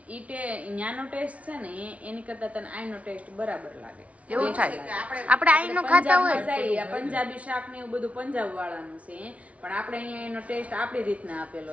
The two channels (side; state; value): left; late; 0.066 ms